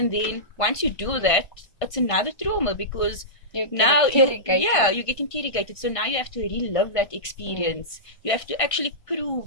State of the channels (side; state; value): right; late; 1.5 ms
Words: then once you do that, it's another trauma because you get interrogated. So now you have to relive that experience. You have to actually